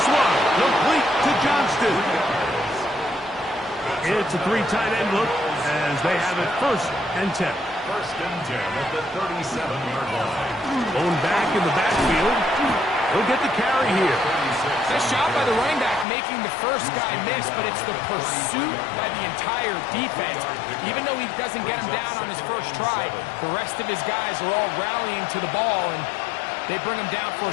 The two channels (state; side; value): drops out; right; at 16.1 s